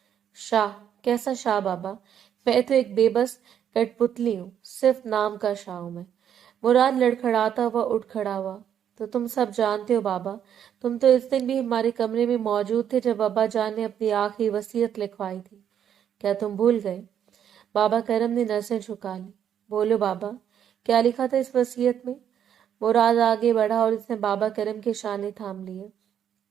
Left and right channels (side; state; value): left; quieter; 9.2 dB